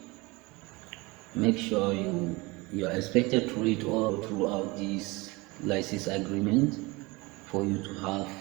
Make sure you are expected to read all throughout this license agreement for you to have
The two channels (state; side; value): quieter; left; 24.1 dB